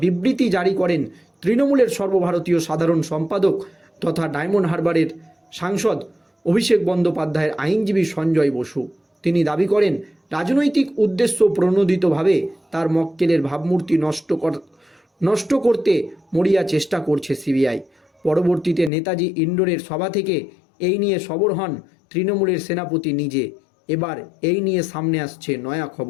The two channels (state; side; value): drops out; right; at 18.9 s